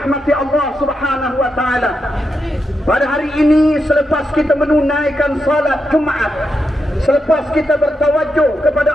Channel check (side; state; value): both; normal; correlation 0.85